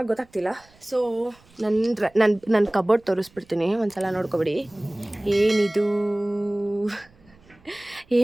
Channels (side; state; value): right; noise; rumble, 30 dB below the sound